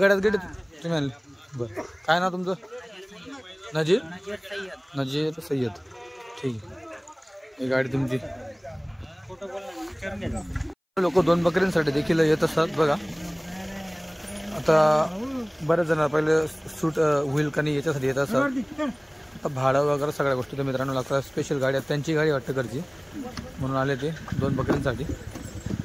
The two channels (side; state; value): both; identical; correlation 1.00